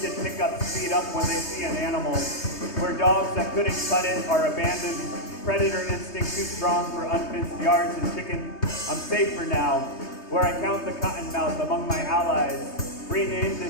pickups speed up when they see an animal, where dogs that couldn't cut it are abandoned, predator instinct too strong for unfenced yards and chicken. I'm safe for now, where I count the cottonmouth among my allies, renamed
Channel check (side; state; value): right; late; 3.2 ms